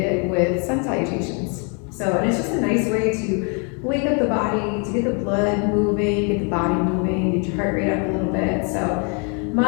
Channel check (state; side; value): quieter; right; 36.9 dB